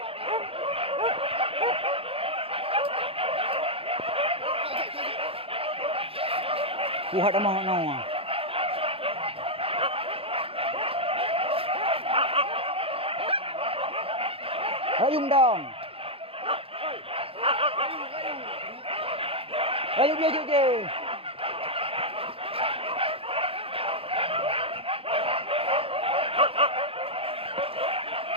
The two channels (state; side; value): late; left; 0.27 ms